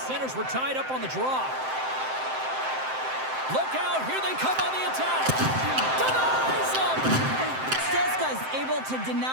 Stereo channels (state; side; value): late; left; 7.7 ms